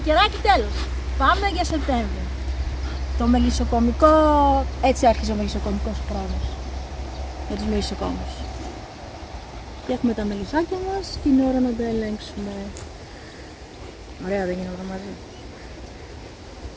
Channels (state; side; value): identical; both; correlation 1.00